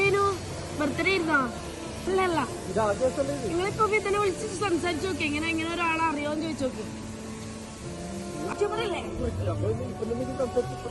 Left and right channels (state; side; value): identical; both; correlation 1.00